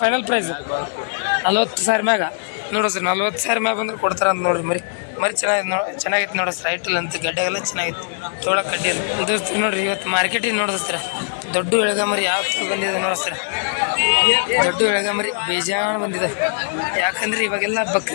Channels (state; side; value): silent; right; 65 dB below the other